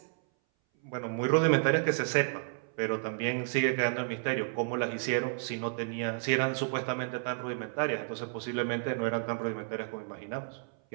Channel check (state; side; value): silent; left; 57 dB below the other